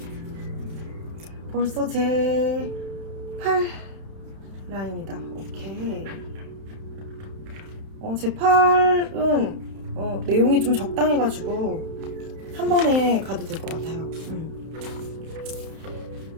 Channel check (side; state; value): left; late; 31 ms